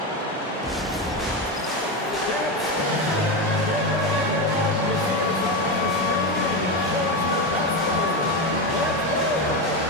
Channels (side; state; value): both; normal; correlation 0.15